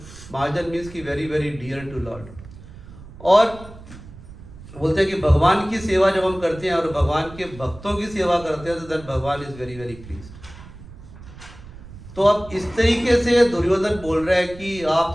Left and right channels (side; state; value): right; noise; rumble, 17 dB below the sound